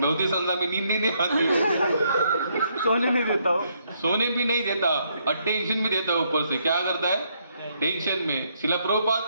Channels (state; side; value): inverted; both; correlation -0.73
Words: नहीं आती, सोने नहीं देता हो। सोने भी नहीं देता और टेंशन भी देता है। ऊपर से क्या करता है, टेंशन में। शिला प्रभुपाद